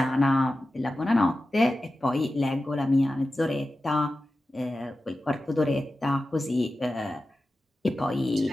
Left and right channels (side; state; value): both; normal; correlation 0.93